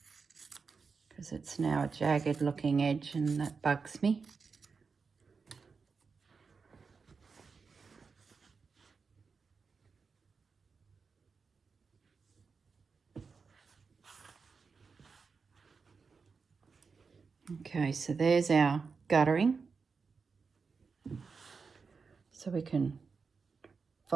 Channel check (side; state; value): left; quieter; 5.1 dB